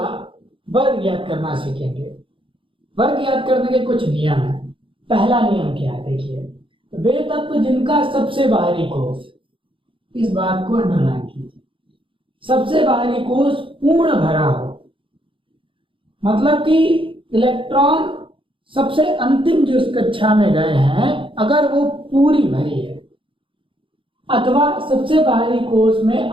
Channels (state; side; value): late; left; 0.25 ms